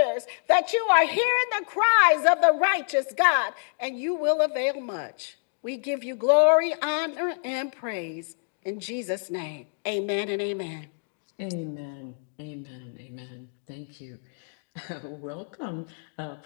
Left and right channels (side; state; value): right; silent; digital silence